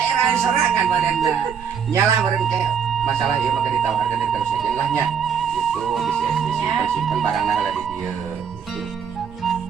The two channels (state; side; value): quieter; left; 7.2 dB